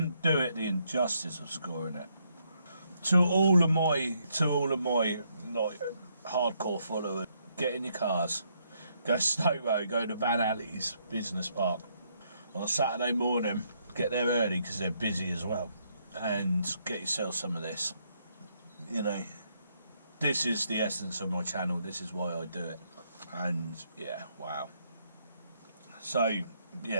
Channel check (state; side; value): inverted; both; correlation -0.74